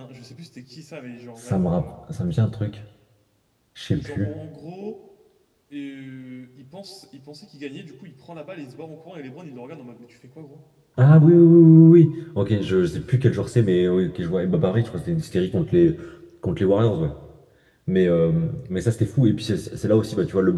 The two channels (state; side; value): identical; both; correlation 1.00